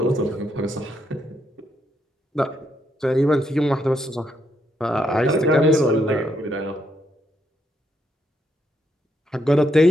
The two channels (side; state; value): both; normal; correlation 0.77